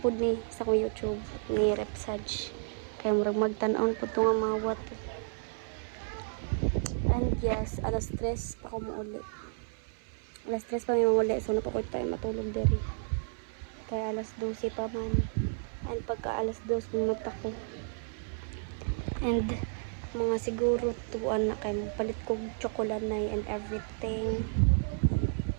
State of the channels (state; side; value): silent; left; 57 dB below the other